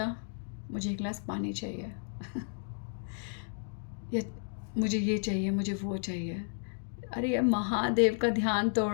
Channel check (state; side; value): silent; right; digital silence